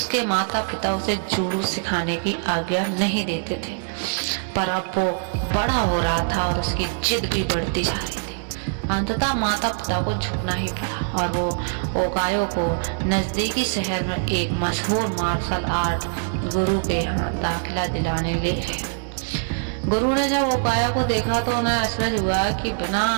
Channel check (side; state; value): left; silent; 63 dB below the other